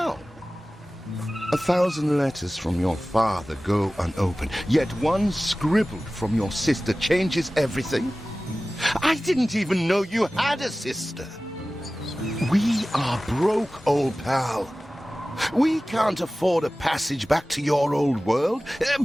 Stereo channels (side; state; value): both; normal; correlation 0.97